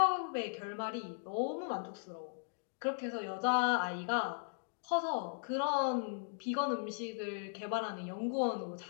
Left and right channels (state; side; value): silent; right; digital silence